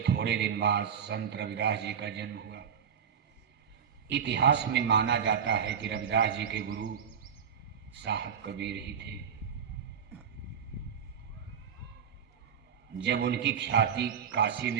दिन बाद संत रविदास जी का जन्म हुआ। इतिहास में माना जाता है कि रविदास जी के गुरु साहब कबीर ही थे। जब उनकी ख्याति काशी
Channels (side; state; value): left; quieter; 7.5 dB